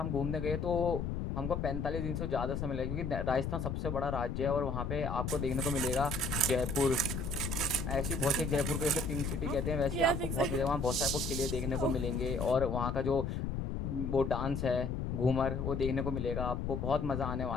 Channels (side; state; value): left; noise; rumble, 2 dB below the sound